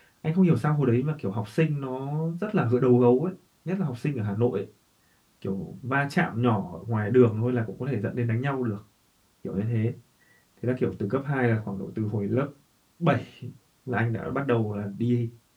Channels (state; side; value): identical; both; correlation 1.00